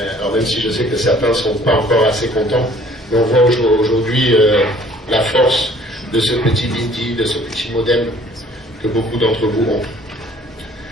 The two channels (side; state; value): both; normal; correlation 0.55